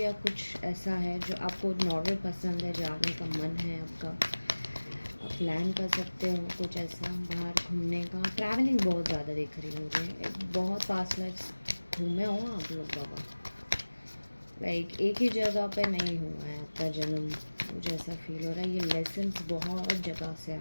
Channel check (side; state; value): both; inverted; correlation -1.00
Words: कुछ ऐसा है जो आपको नॉर्वे पसंद है, जाने का मन है आपका, आप प्लान कर सकते हो कुछ ऐसा बाहर घूमने का. ट्रैवलिंग बहुत ज़्यादा दिख रही है मुझे, बहुत पास्ट लाइफ घूमे हो आप लोग बाबा. लाइक एक ही जगह पे नहीं हुआ है आपका जन्म, मुझे ऐसा फील हो रहा है. ये लेसन्स बहुत जगह से